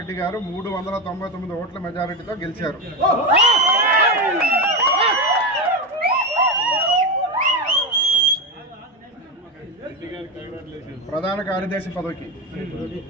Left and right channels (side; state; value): both; normal; correlation 0.15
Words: గారు 399 ఓట్ల మెజారిటీతో గెలిచారు. ప్రధాన కార్యదర్శి పదవికి